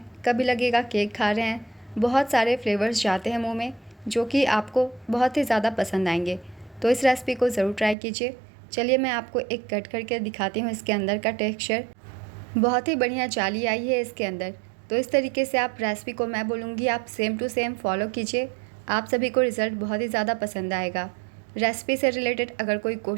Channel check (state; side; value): drops out; left; at 8.0 s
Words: कभी लगेगा केक खा रहे हैं। बहुत सारे फ्लेवर्स जाते हैं मुंह में जो कि आपको बहुत ही ज़्यादा पसंद आएंगे। तो इस रेसिपी को ज़रूर ट्राई कीजिए। चलिए मैं आपको एक कट करके दिखाती हूँ। इसके अंदर का टेक्सचर बहुत ही बढ़िया जाली आई है इसके अंदर। तो इस तरीके से आप रेसिपी को, मैं बोलूँगी आप सेम टू सेम फॉलो कीजिए। आप सभी को रिज़ल्ट बहुत ही ज़्यादा पसंद आएगा। रेसिपी से रिलेटेड अगर कोई